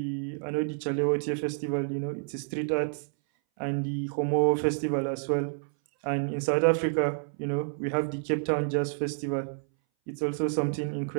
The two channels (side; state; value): left; silent; 59 dB below the other